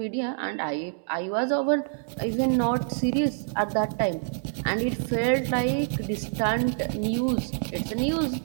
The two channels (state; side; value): silent; left; 60 dB below the other